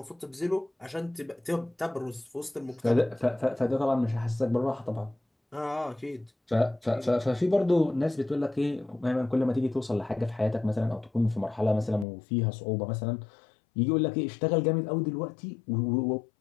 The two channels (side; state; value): right; drops out; at 12.1 s